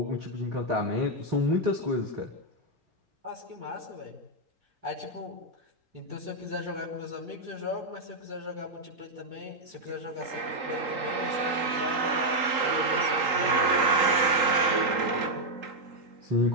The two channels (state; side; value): late; left; 3.8 ms